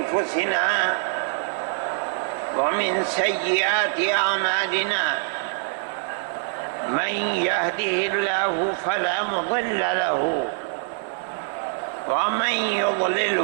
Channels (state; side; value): silent; left; 62 dB below the other